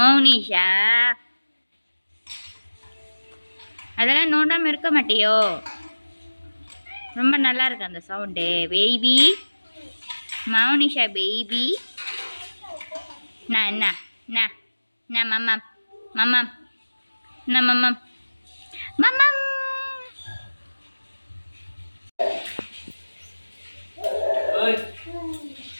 அதெல்லாம் நோண்டாமல் இருக்க மாட்டியோ? ரொம்ப நல்லா இருக்கு அந்த சவுண்டு. Baby Mounisha baby. என்ன என்ன என்ன மம்மம் மம்மம் என்ன மம்மம் மம்மம்.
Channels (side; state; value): both; inverted; correlation -1.00